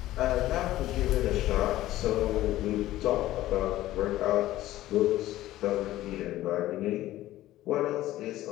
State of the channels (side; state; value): right; quieter; 15.1 dB